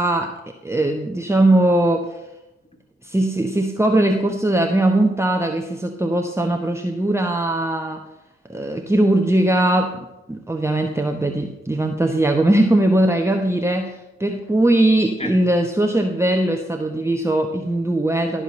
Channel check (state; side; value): normal; both; correlation 0.83